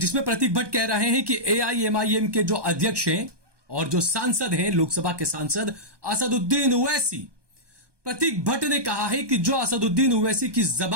प्रतीक भट्ट कह रहे हैं कि AIMIM के जो अध्यक्ष हैं और जो सांसद हैं, लोकसभा के सांसद असदुद्दीन ओवैसी, प्रतीक भट्ट ने कहा है कि जो असदुद्दीन ओवैसी की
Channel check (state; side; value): late; left; 1.2 ms